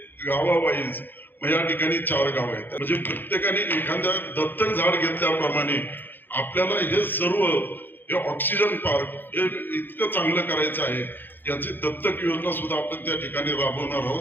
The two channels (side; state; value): right; late; 0.095 ms